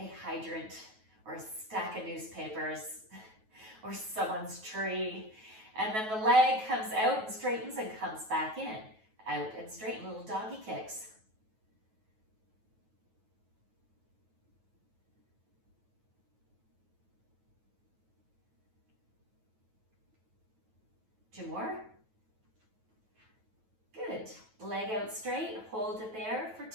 hydrant or a stack of newspapers or someone's tree. And then the leg comes out and straightens and comes back in. Out and straighten, little doggy kicks. Two more. Good. Leg out straight, hold it there for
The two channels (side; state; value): left; late; 9.2 ms